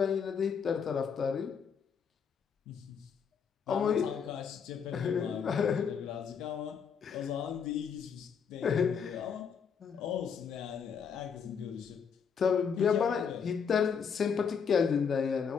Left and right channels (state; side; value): quieter; right; 6.7 dB